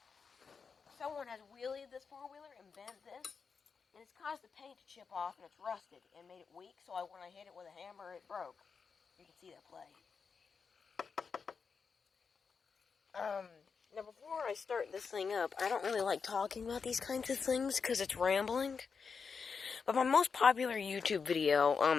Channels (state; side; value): quieter; right; 5.6 dB